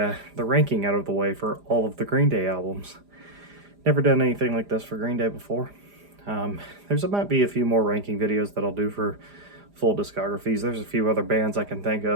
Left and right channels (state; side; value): late; left; 4.9 ms